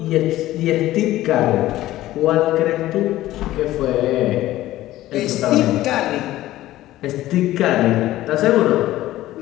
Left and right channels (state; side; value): quieter; right; 15.3 dB